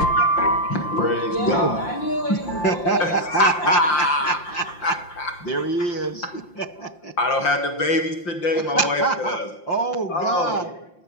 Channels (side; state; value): right; late; 5.8 ms